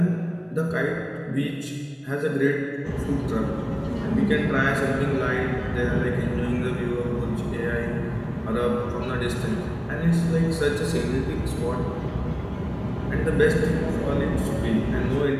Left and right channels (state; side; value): identical; both; correlation 1.00